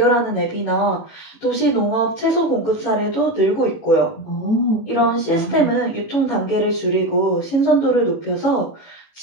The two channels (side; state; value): right; late; 18 ms